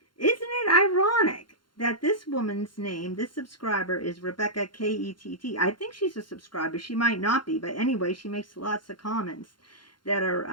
Isn't it ironic that this woman's name, this subscriber, is Rebecca K-E-T-T? I think she's a subscriber. She might not be, but anyway, she makes lots of comments that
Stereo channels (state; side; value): late; right; 0.72 ms